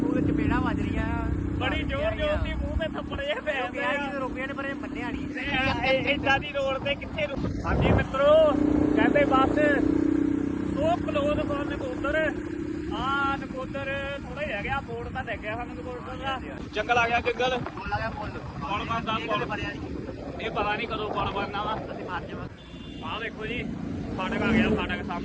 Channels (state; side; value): identical; both; correlation 1.00